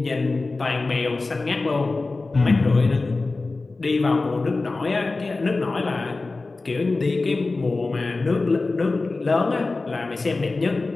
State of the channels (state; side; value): quieter; right; 3.5 dB